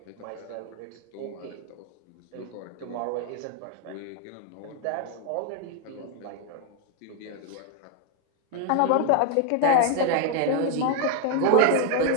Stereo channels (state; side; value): different; both; correlation 0.00